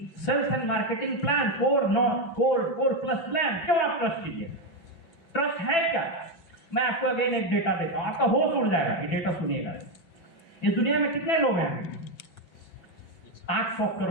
sales and marketing plan, core plus plan? क्यों आप ट्रस्ट कीजिए? ट्रस्ट है क्या? मैं आपको अगेन एक डेटा देता हूं, आपका होश उड़ जाएगा। ये डेटा सुनिएगा। इस दुनिया में कितने लोग हैं? 800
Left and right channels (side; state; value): right; late; 6.0 ms